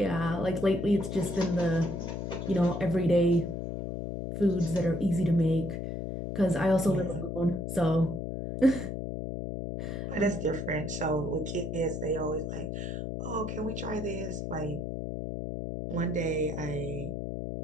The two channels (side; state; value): left; noise; hum, 4 dB below the sound